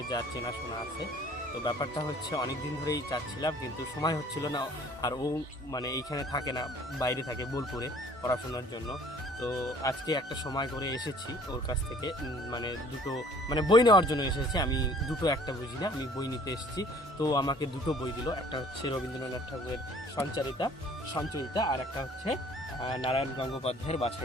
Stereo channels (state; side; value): normal; both; correlation 0.53